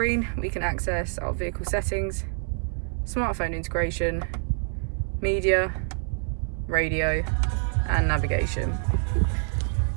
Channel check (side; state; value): left; silent; 59 dB below the other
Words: we can access our vehicle settings, smartphone integration, media, radio, and navigation.